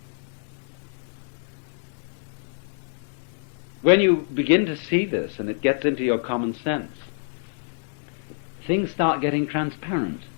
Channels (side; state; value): right; silent; digital silence